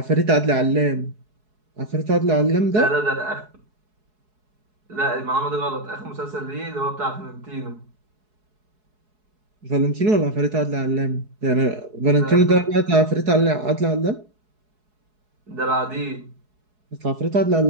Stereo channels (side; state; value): left; late; 4.7 ms